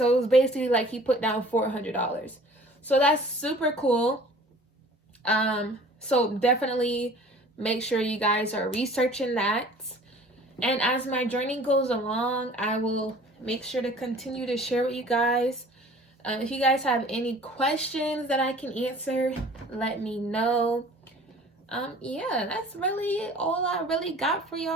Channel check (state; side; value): normal; both; correlation 0.48